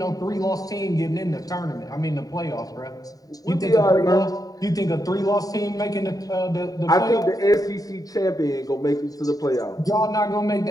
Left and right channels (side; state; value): right; late; 0.18 ms